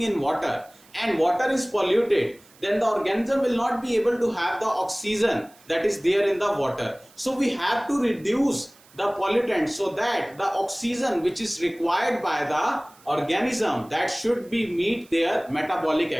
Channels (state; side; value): noise; right; hiss, 27 dB below the sound